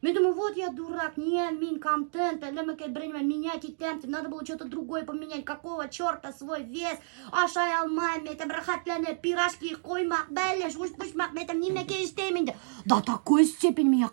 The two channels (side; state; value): left; silent; digital silence